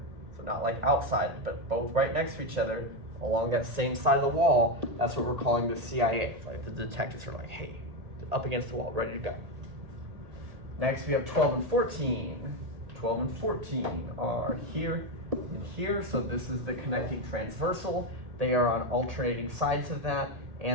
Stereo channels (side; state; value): left; late; 1.8 ms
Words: so not like outside, but both right next to each other along that same side of the wall, that's what we're calling the CIA. Right? The detectives are like, hey, up against the wall, ready to go. Next we have 12 and 14. 12 and 14 are here and here, so this is the connecting transversal. They are on alternating sides of that,